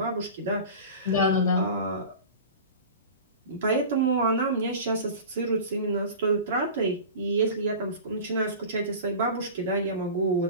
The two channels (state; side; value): inverted; both; correlation -0.35